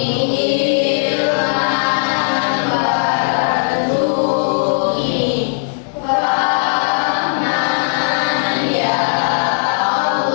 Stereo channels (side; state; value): right; silent; 68 dB below the other